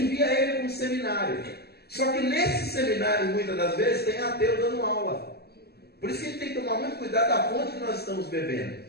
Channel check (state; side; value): late; right; 0.47 ms